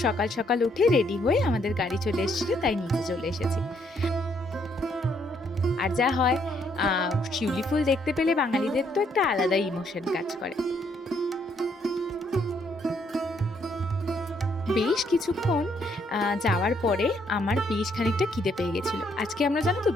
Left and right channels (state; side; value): normal; both; correlation 0.71